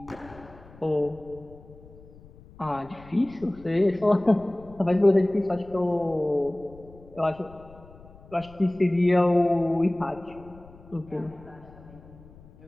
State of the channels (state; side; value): noise; left; rumble, 22 dB below the sound